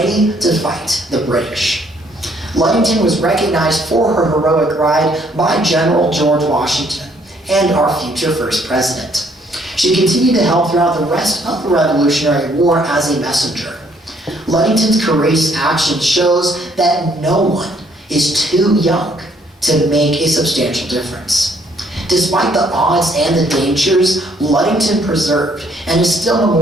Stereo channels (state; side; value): normal; both; correlation 0.66